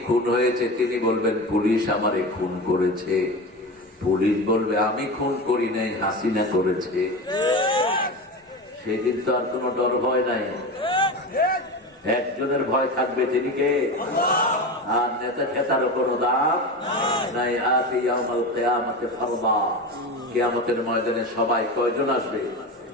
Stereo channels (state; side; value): normal; both; correlation 0.25